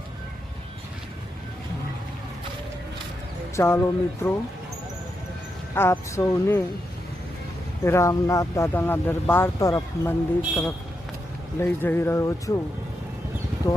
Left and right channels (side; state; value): both; normal; correlation 0.84